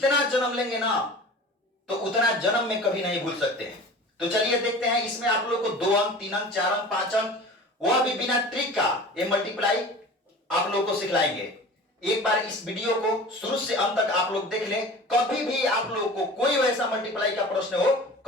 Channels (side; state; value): both; normal; correlation 0.39